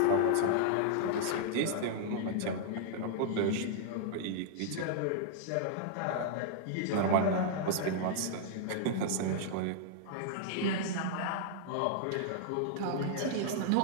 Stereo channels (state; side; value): different; both; correlation -0.01